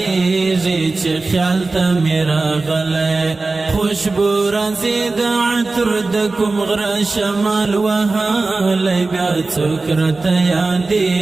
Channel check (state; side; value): quieter; left; 3.6 dB